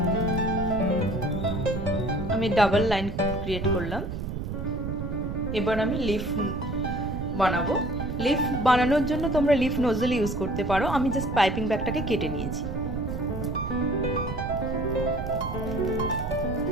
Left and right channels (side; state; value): right; noise; rumble, 5 dB below the sound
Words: আমি ডাবল লাইন ক্রিয়েট করলাম। এবার আমি লিফ বানাবো। লিফ বানানোর জন্য তোমরা লিফ নজল ইউজ করতে পারো। আমি জাস্ট পাইপিং ব্যাগটাকে কেটে নিয়েছি।